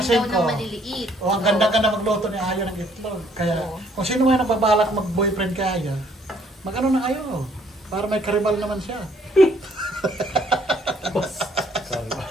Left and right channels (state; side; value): normal; both; correlation 0.64